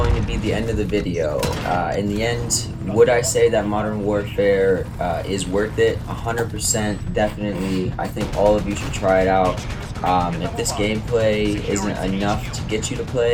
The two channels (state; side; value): identical; both; correlation 1.00